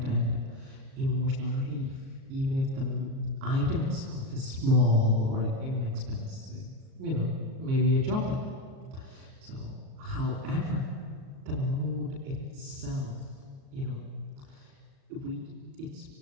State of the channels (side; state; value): left; late; 37 ms